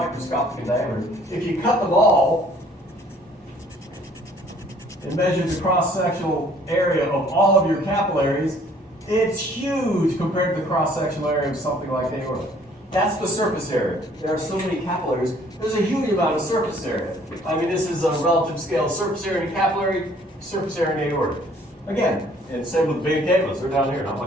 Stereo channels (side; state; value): both; normal; correlation 0.58